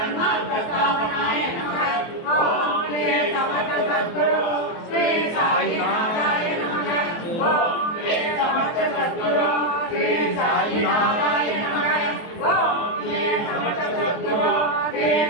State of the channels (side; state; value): right; late; 24 ms